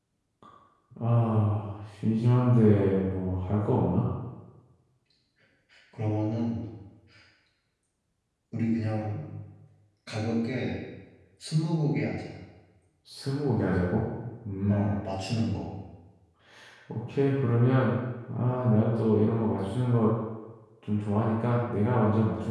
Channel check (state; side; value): identical; both; correlation 1.00